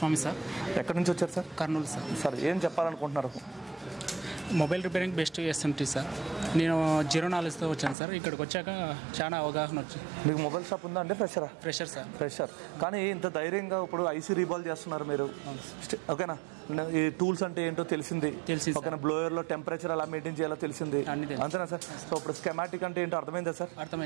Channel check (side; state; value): left; drops out; at 8.0 s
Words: సార్. ఎక్కడి నుంచి వచ్చారు సార్? కర్నూలు సార్. సార్ ఏం చెప్పాలనుకుంటున్నారు? Mobile repairing best SMT sir. నేను 0 knowledgeతో వచ్చాను సార్. ఇక్కడికి వచ్చాక చాలా అవగాహన వచ్చింది. మీకు మొబైల్ షాప్ ఉందా అంటే ఫ్రెషరా? Fresher sir. ఫ్రెషర్. కానీ ఇంత ధైర్యంగా ఇప్పుడు ఐసీ రీబాల్ చేస్తున్నారు మీరు, ఓకేనా? ఈ టూల్స్ అంటే ఏంటో తెలిసింది, ఓకేనా? బ్లోయర్లో టెంపరేచర్ ఎలా మెయింటైన్ చేయాలో తెలిసింది, అంతేనా సార్? సో ఇప్పుడు స్కెమాటిక్ అంటే ఏంటో అర్థమైందా సార్?